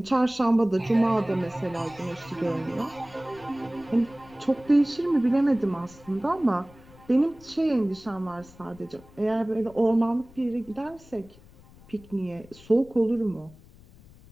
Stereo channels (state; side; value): noise; left; rumble, 23 dB below the sound